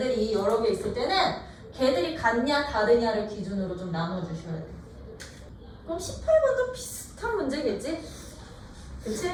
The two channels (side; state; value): both; identical; correlation 1.00